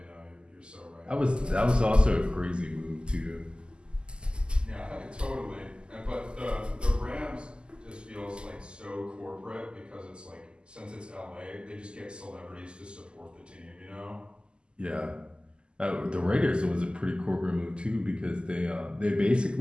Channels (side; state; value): left; late; 0.049 ms